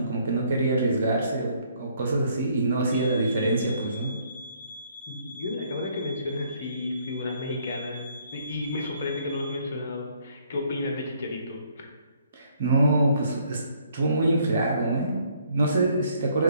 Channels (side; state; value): both; inverted; correlation -0.66